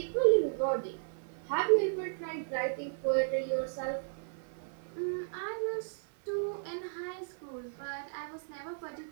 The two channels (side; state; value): left; silent; digital silence